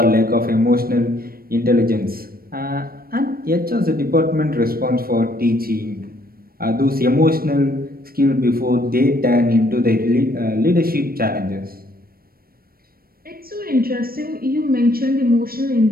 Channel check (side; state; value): left; late; 0.43 ms